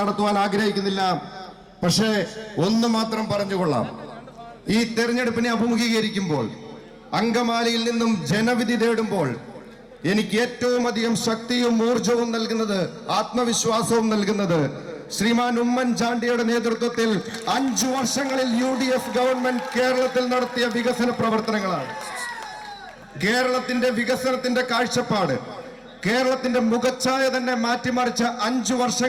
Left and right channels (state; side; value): identical; both; correlation 1.00